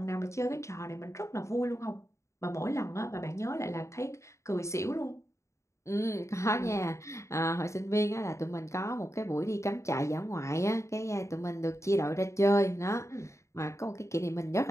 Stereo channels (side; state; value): right; late; 0.14 ms